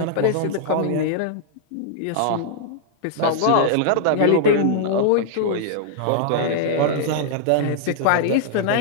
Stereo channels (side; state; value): both; different; correlation -0.01